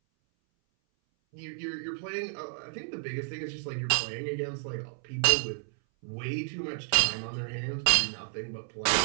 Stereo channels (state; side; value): silent; left; 57 dB below the other